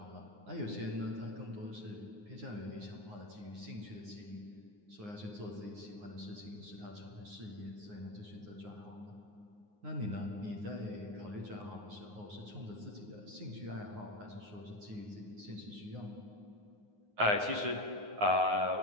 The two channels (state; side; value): late; left; 9.6 ms